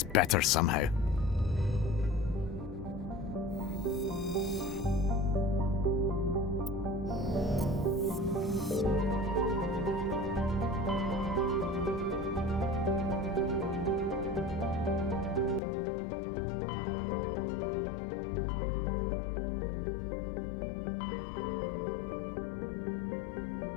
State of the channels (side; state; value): right; drops out; at 15.6 s